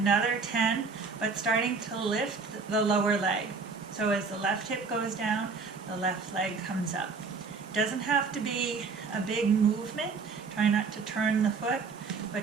10, but starting to lift the lower leg. So as the left hip goes down, the left leg comes up. Doesn't have to be a big movement. Try not to turn the foot,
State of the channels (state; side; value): quieter; left; 4.8 dB